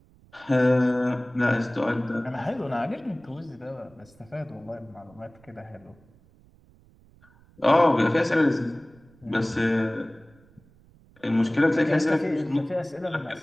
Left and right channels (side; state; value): right; noise; rumble, 28 dB below the sound